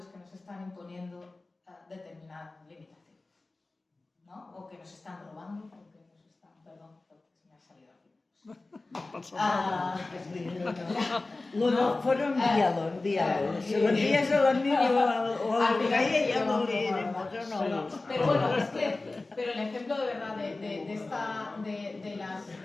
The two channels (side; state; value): right; quieter; 3.3 dB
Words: que nos están imponiendo determinadas limitaciones, ¿no? O que nos están robando, o que nos están... Perdón, porque se me ha salido aquí. Lo del foro, envíalo. Si lo envías a la niña o a la calle, ya lo leeremos, ¿o no? Pero bueno, pero el ejemplo de verdad de